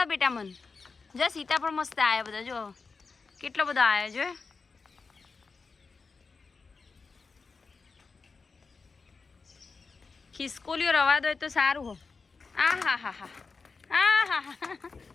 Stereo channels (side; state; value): right; quieter; 4.5 dB